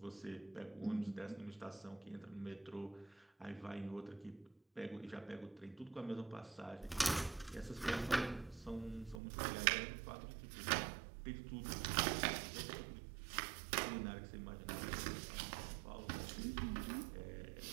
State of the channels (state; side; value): drops out; left; at 9.2 s